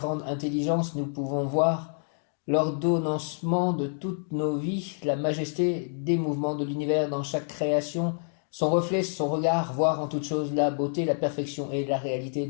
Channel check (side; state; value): right; silent; 59 dB below the other